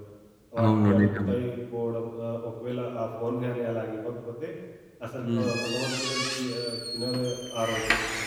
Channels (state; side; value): identical; both; correlation 1.00